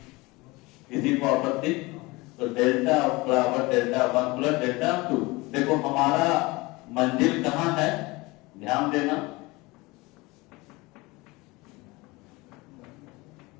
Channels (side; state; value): right; quieter; 23.1 dB